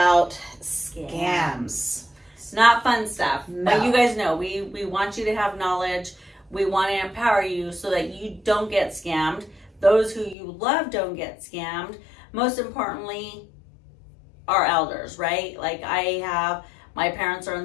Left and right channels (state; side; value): drops out; right; at 10.4 s